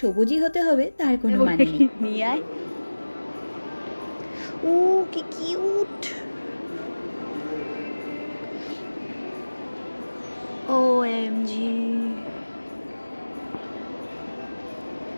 সবুজই হতে হবে তার কোনো মানে নেই। নিয়ে আয়। ও কি কিউট! OMG!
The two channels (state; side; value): inverted; both; correlation -1.00